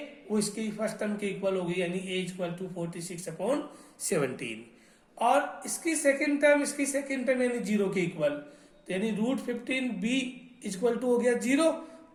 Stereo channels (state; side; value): identical; both; correlation 1.00